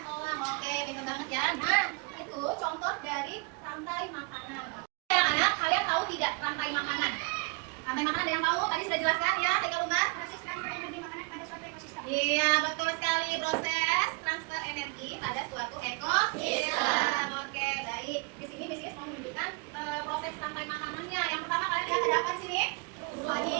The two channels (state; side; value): quieter; left; 31.2 dB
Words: Oke, pintar banget ya. Nah, itu contoh dari rantai makanan. Anak-anak, kalian tahu tidak rantai makanan? Rantai makanan ada yang tahu? Tadi sudah jelaskan ya, Kak Umar. Proses transfer energi makanan pada suatu ekosistem. Iya, betul sekali, proses transfer energi pada suatu ekosistem. Oke, baik. Di sini Miss mau menunjukkan proses rantai makanannya. Yang pertama kalian lihat ada apa di sini?